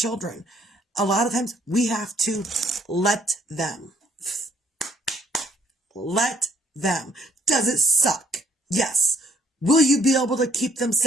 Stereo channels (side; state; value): both; normal; correlation 0.65